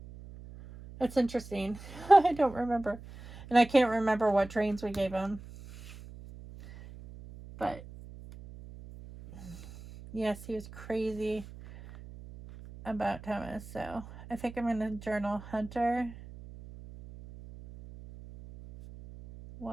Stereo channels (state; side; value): noise; right; hum, 16 dB below the sound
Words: That's interesting. I don't remember. And I can't remember what trains we gave him. But yes, he was crazy about Thomas. So I think I'm going to journal Hunter